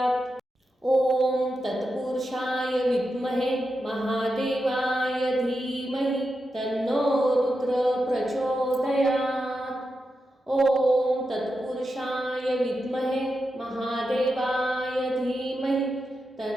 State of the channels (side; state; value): both; normal; correlation 0.88